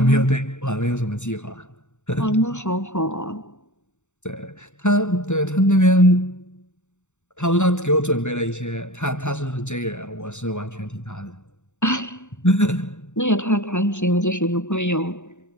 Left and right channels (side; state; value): right; late; 0.84 ms